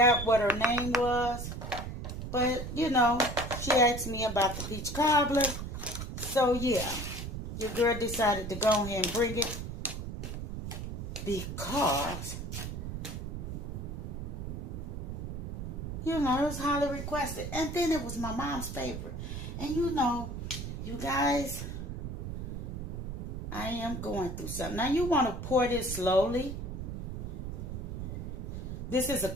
what her name was, but you know, she asked me about the peach cobbler. So yeah, your girl decided to go ahead and bring it because, you know, it was highly requested. And then it was my mom's favorite. And you know, you guys, I am going through something. Now you want to pour this slowly. This is a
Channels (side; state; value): right; noise; rumble, 6 dB below the sound